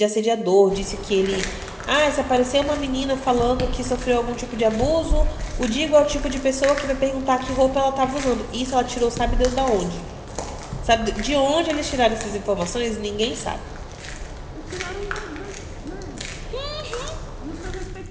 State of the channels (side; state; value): both; identical; correlation 1.00